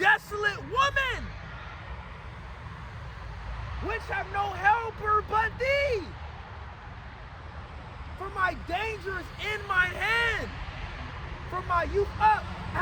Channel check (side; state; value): both; identical; correlation 1.00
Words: woman, which have no helper but thee. For my danger is in mine hand. From my youth up, I